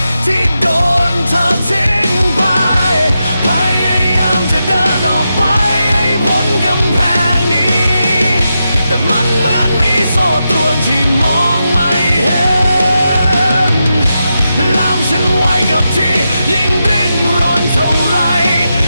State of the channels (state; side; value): inverted; both; correlation -0.88